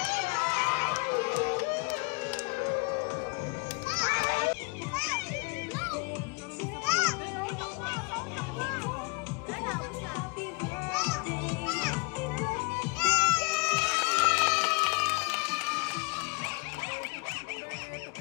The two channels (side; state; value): right; quieter; 30.6 dB